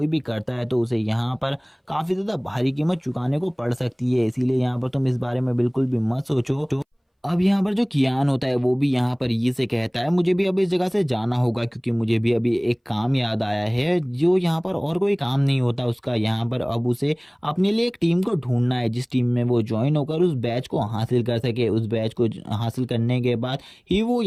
भी करता है तो उसे यहाँ पर काफ़ी ज़्यादा भारी कीमत चुकाने को पड़ सकती है। इसीलिए यहाँ पर तुम इस बारे में बिल्कुल भी मत सोचो। अब यहाँ पर जो कियान होता है वो भी यहाँ पर ये से कहता है मुझे भी अब इस जगह से जाना होगा क्योंकि मुझे भी अभी एक काम याद आया है जो यहाँ पर और कोई काम नहीं होता उसका। यहाँ पर अब उसे अपने लिए एक टीम को ढूंढना है जिस टीम में वो ज्वाइन होकर उस बैच को हासिल कर सके। उस बैच को हासिल करने के बाद ही वो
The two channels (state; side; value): identical; both; correlation 1.00